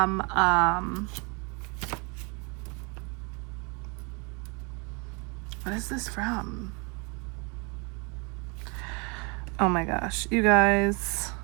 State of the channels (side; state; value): left; quieter; 31.9 dB